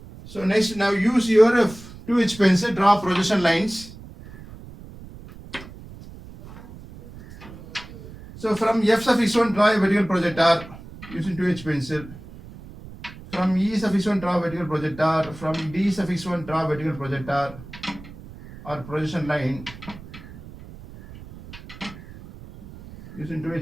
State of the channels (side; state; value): right; noise; rumble, 16 dB below the sound